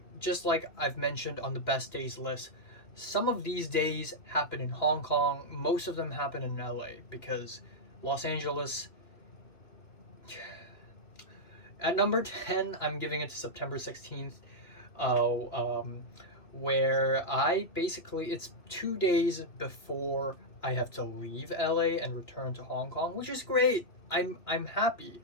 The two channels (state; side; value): late; right; 3.0 ms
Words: just like I've mentioned on the best days list, some of these days happen in Hong Kong, most of them happen in LA because Los Angeles. At number 10, I'm giving it to September 16th, uh, um, where it's 2 days before I have to leave LA and return to Hong Kong, which is great. I'm happy.